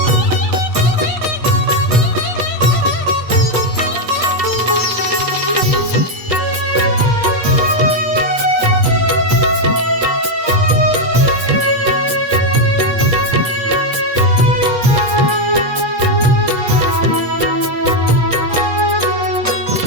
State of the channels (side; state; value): left; late; 8.4 ms